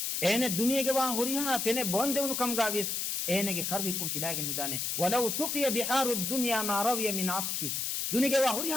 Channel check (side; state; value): left; noise; hiss, 1 dB below the sound